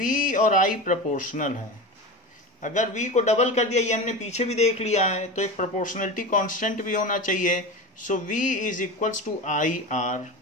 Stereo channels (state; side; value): normal; both; correlation 0.26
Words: और I प्रोपोर्शनल है। अगर V को डबल कर दिया, ये हमने पीछे भी देख लिया है, तो एक प्रोपोर्शनलिटी कांस्टेंट भी होना चाहिए। So V is equals to IR,